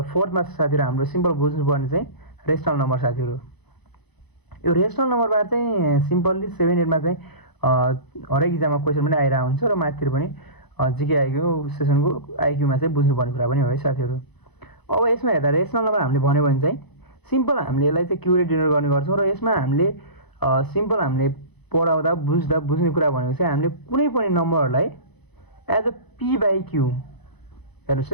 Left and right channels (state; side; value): late; right; 0.99 ms